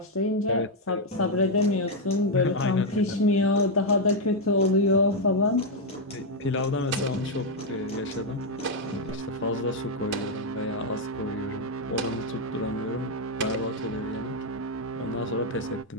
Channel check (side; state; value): both; normal; correlation 0.00